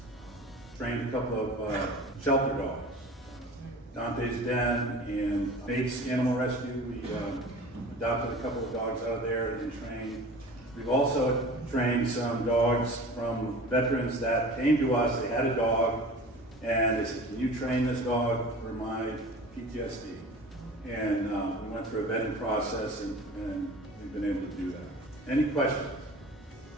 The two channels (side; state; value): both; normal; correlation 0.39